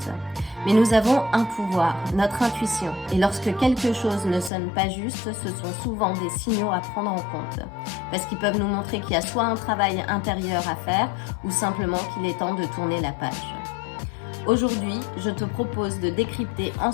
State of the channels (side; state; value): right; drops out; at 4.5 s